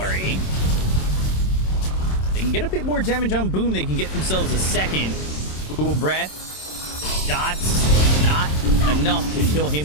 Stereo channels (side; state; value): right; late; 27 ms